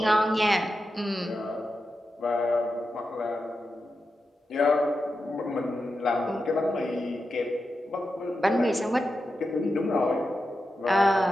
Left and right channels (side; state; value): both; normal; correlation 0.89